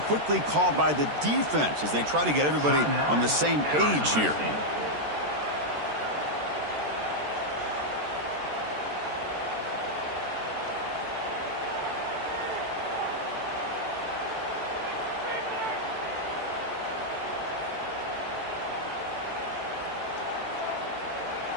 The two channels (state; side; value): late; left; 14 ms